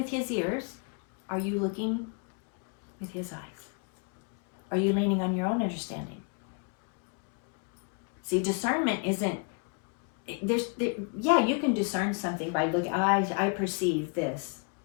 his ears? Are you looking with his eyes? Are you leaning on your own understanding? See, discernment isn't yeah, you can discern something by looking. I perceive this.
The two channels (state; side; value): quieter; right; 36.5 dB